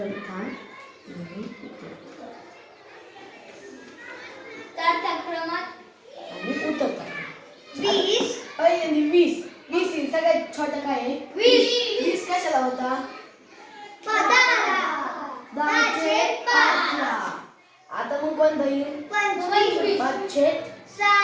क्रमात आणि उतरता 20. पहिल्यांदा 20 20 सगळ्यात छोटा काय आहे? 20 कशाला होता? 10/5 ला. आता मग कोणता येईल? 25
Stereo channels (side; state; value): both; identical; correlation 1.00